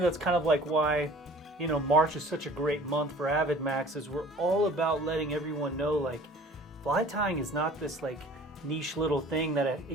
that's kind of like why, March is such a great month for AvidMax is we're all about letting everyone know, like, fly tying is not this, like, niche little thing that,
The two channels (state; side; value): normal; both; correlation 0.48